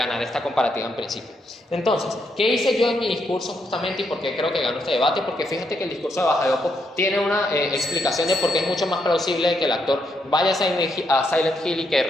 esta comparativa en principio. Entonces, ¿qué hice yo en mi discurso justamente y por qué creo que ganó este debate? Porque fíjate que el discurso de Bajayopo tiene una explicación de por qué es mucho más plausible que el actor vaya a Silent Hill y que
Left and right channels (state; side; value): normal; both; correlation 0.78